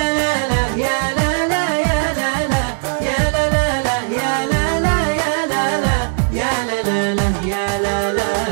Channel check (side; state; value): left; silent; digital silence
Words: لا لا يا لا لا يا لا لا يا لا لا يا لا لا يا لا لا يا لا لا يا لا لا.